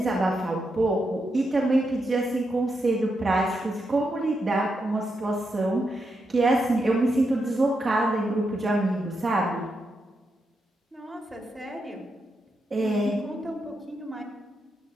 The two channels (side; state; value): both; normal; correlation 0.84